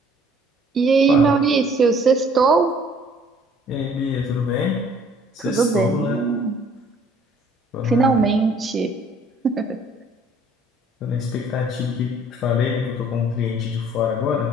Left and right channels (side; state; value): both; normal; correlation 0.58